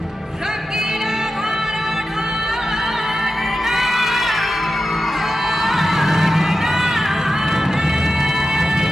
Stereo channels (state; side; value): normal; both; correlation 0.91